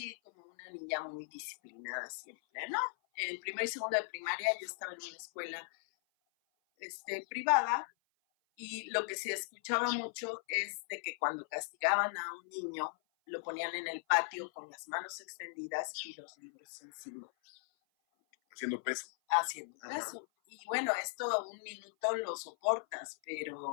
como una niña muy disciplinada siempre, ¿no? En primero y segundo de primaria yo estaba en una escuela privada y lo que se escuchaba mucho es de que cuando castigaban a un niño lo ponían en el patio con las manos extendidas y los libros encima. Haciendo peso. Haciendo Ajá. eso. Y bueno, esto un minuto lo soportas,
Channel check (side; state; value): right; silent; 52 dB below the other